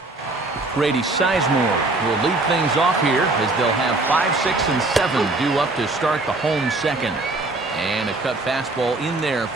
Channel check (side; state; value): left; quieter; 3.1 dB